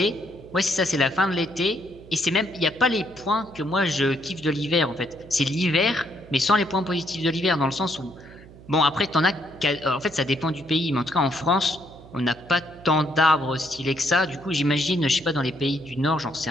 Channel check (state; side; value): noise; right; hum, 20 dB below the sound